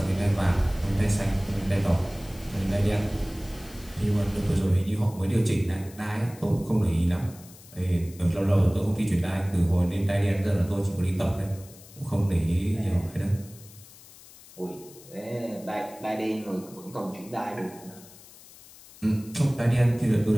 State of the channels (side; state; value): left; noise; hiss, 21 dB below the sound